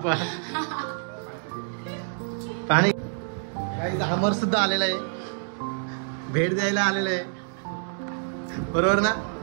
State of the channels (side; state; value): left; silent; 60 dB below the other